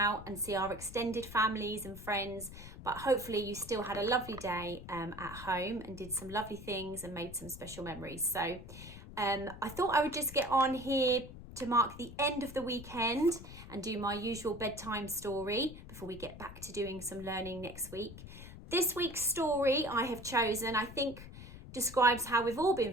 and see our extended families and friends, but hopefully you still had a lovely day at home and did some lovely things and made some special memories. So I thought I would just get on here to mark the end of the weekend and do my usual bedtime story before we get back to doing some learning next week. This week's story I have chosen, I think, describes how we've all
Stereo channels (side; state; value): left; noise; rumble, 14 dB below the sound